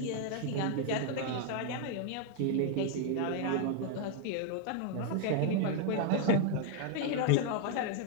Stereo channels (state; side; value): different; both; correlation 0.00